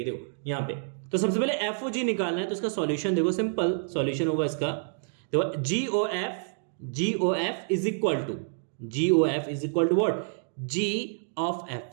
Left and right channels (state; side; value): silent; left; digital silence